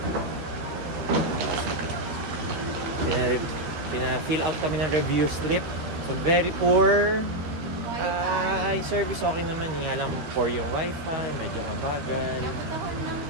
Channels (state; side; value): late; left; 13 ms